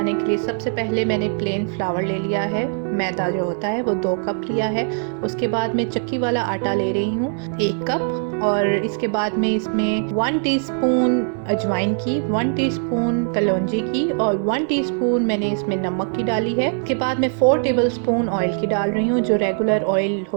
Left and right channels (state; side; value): silent; left; 55 dB below the other